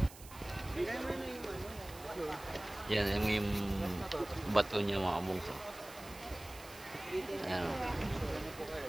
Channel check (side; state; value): right; noise; hiss, 17 dB below the sound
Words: Yan, yung bato niya mga bungso. Ayan.